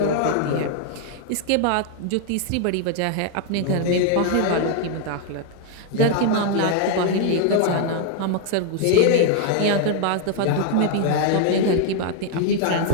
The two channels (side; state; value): both; different; correlation 0.00